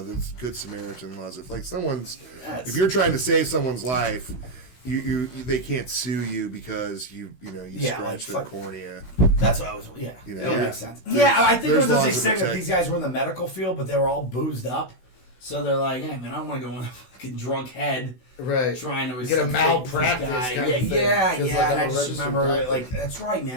that's Good Samaritan laws. If like if you're trying to save someone's life, you they can't sue you because you scratched their cornea. That's what I was. Yeah, that makes sense. I think it was just saying that these guys were in the medical field, but they were all boozed up. So they're like, hey, man, I don't want to go in a fucking drunk head. Right. Trying to get a malpractice guy. Yeah. And I just remember, like, that's right,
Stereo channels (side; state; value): right; late; 16 ms